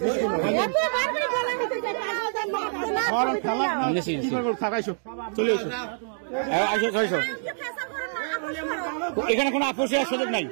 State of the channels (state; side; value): silent; left; digital silence